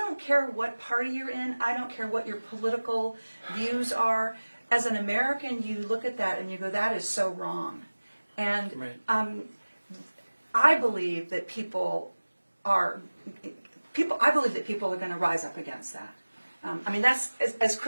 care what party you're in. I don't care what your political views are. As an American, you look at that and you go, "That is so wrong." And Right. I believe that people are going to rise up against that. I mean, that's as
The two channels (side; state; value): both; inverted; correlation -1.00